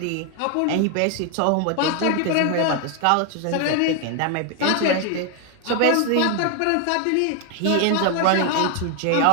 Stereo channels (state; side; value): different; both; correlation 0.00